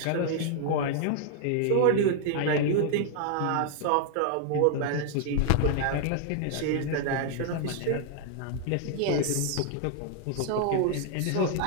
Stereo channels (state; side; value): different; both; correlation 0.00